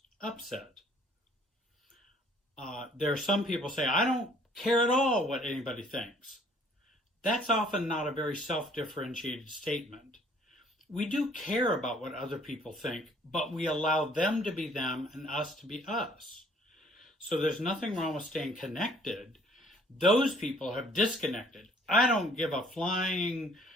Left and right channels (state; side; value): normal; both; correlation 0.58